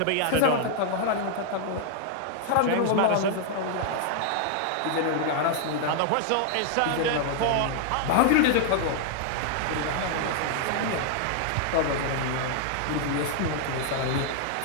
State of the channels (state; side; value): different; both; correlation 0.00